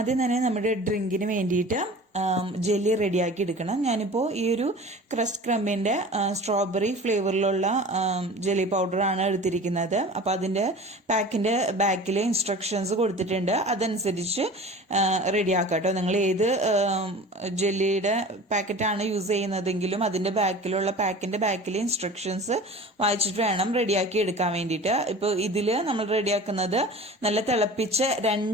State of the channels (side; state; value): both; normal; correlation 0.39